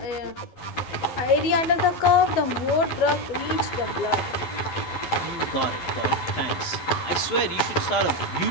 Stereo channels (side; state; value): right; late; 12 ms